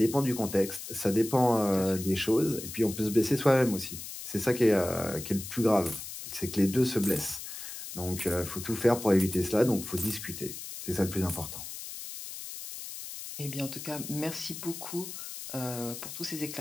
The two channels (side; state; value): left; noise; hiss, 10 dB below the sound